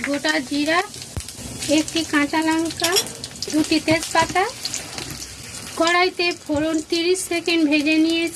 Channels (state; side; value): identical; both; correlation 1.00